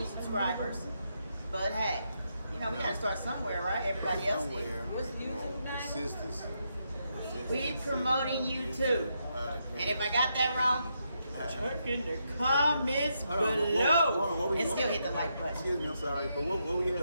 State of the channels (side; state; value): both; inverted; correlation -0.81